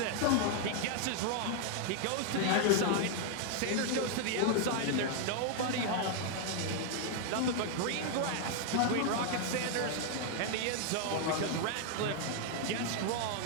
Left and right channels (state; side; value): different; both; correlation 0.00